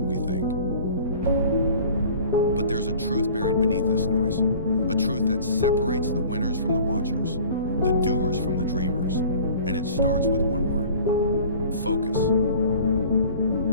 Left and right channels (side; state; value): both; inverted; correlation -0.46